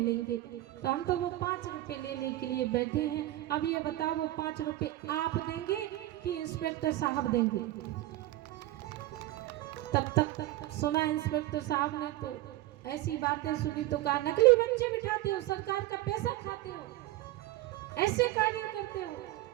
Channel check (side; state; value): left; quieter; 16.2 dB